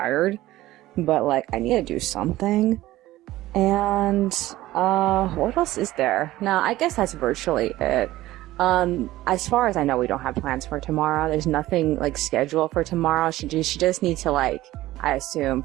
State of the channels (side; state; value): left; quieter; 16.3 dB